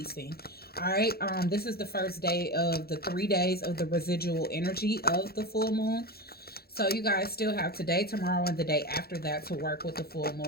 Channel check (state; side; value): late; right; 0.45 ms